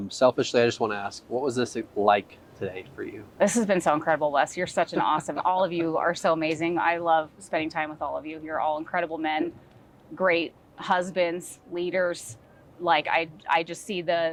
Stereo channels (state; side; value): identical; both; correlation 1.00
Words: Selfishly, I just want to ask, what was this like today for you? This has been so incredible, Wes. You're such an awesome, all of you are so amazing. I love spending time with all of you. You're all incredible men, great husbands, leaders. Like I just see